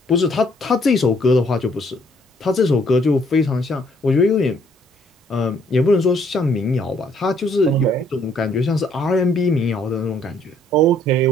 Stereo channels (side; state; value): both; normal; correlation 0.65